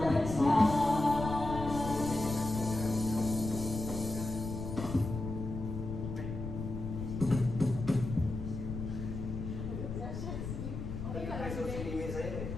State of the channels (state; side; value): noise; left; rumble, 6 dB below the sound